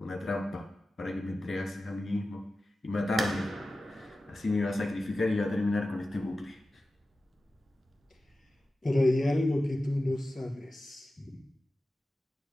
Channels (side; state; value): both; normal; correlation 0.94